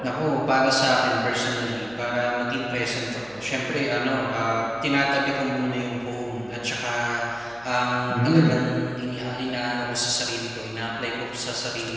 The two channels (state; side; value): noise; left; hum, 25 dB below the sound